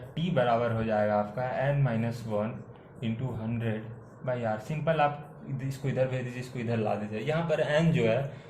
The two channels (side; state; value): both; identical; correlation 1.00